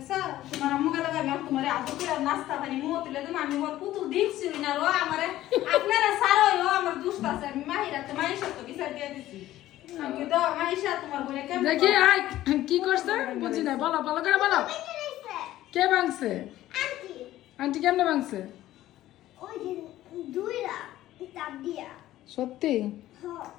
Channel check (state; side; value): quieter; right; 14.5 dB